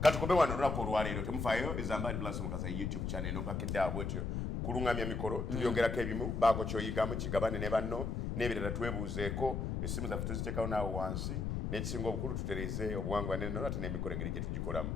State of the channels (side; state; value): left; noise; rumble, 2 dB below the sound